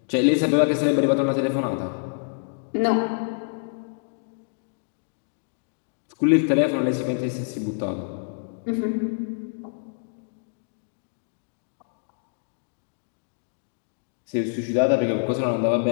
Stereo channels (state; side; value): silent; right; digital silence